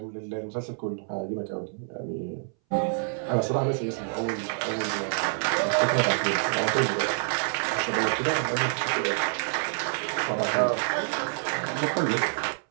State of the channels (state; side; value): silent; left; 60 dB below the other